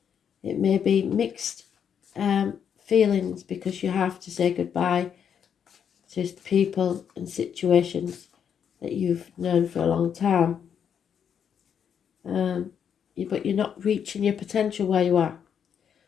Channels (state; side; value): quieter; right; 7.9 dB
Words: It may be mixed feelings because you have to say goodbye to people and situations that you've known for a long time. But you're not reaching your potential where you are.